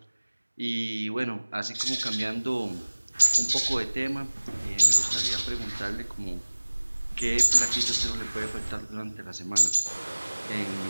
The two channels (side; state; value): both; inverted; correlation -1.00